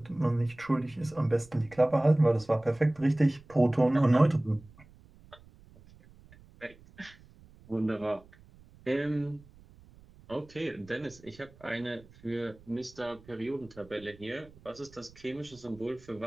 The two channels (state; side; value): noise; right; rumble, 24 dB below the sound